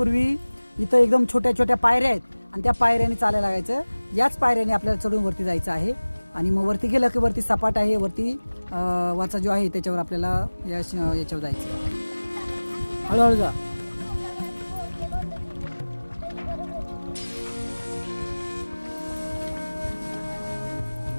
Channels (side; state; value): both; inverted; correlation -1.00